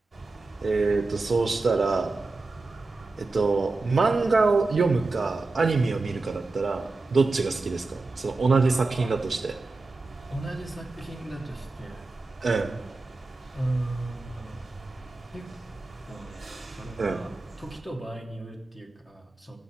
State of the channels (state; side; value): quieter; left; 3.5 dB